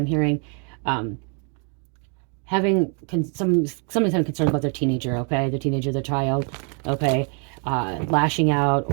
hearing having somebody's having concerns about their teenager, okay, their teenager, their child, okay, lashing out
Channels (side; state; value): left; quieter; 39.6 dB